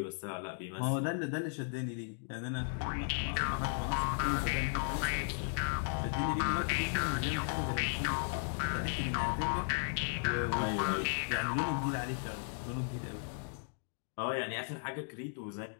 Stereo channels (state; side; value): silent; right; digital silence